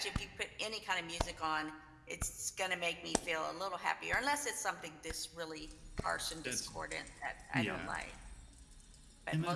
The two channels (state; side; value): identical; both; correlation 1.00